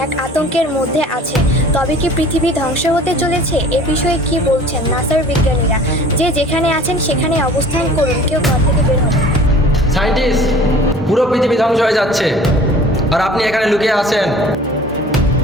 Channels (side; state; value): both; normal; correlation 0.47